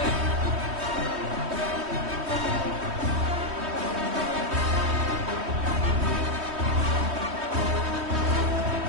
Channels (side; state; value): left; late; 3.2 ms